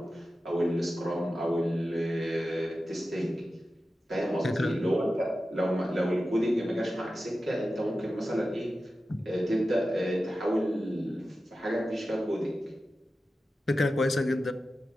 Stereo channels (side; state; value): both; normal; correlation 0.93